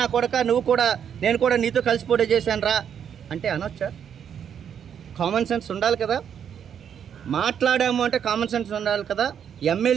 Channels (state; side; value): quieter; left; 8.4 dB